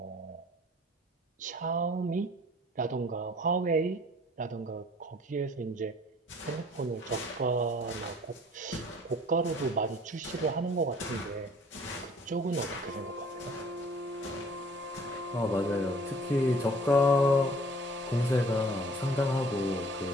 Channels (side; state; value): both; normal; correlation 0.53